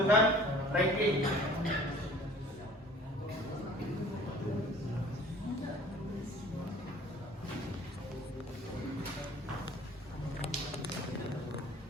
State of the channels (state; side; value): normal; both; correlation 0.49